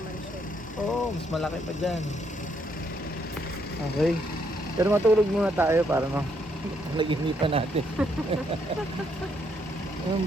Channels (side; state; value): both; normal; correlation 0.73